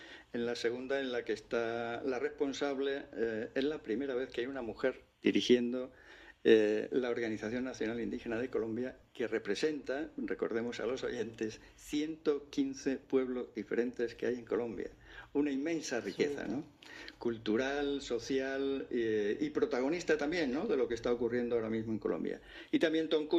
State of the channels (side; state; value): both; identical; correlation 1.00